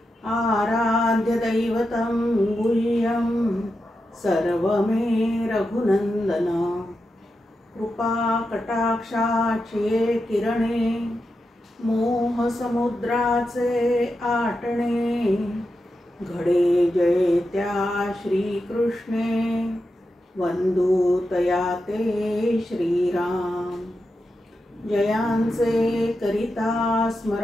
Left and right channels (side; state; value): both; normal; correlation 0.88